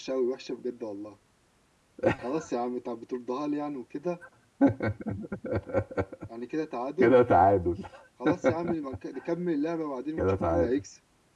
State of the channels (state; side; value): identical; both; correlation 1.00